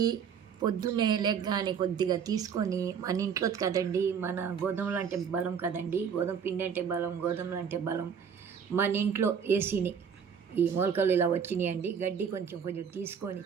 పొద్దున్నే లెగ్గానే కొద్దిగా తీసుకొని మన ఇంట్లో కదండి, మన గోధుమలు అంటే బలం కదండి, గోధుమ పిండి అంటే బలం, గోధుమలు అంటే బలం. మన ఇంట్లో వేసిని ఈ మొలకలు ఇలా వచ్చినాయండి. గడ్డి కొంచెం కొంచెం తీసుకొని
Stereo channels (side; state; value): left; quieter; 7.2 dB